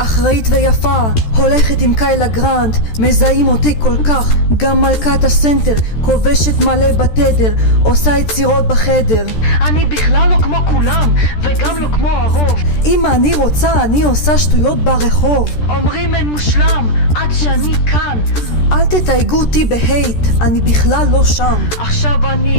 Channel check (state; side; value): late; right; 13 ms